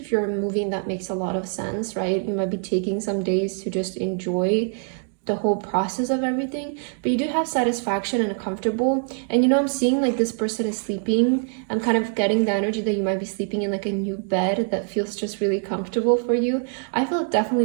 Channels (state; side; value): silent; left; 56 dB below the other